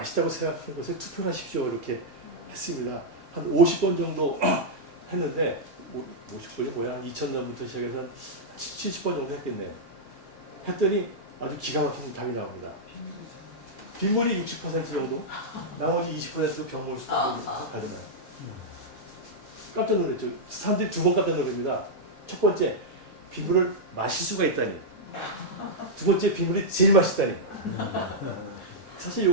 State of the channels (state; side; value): normal; both; correlation -0.06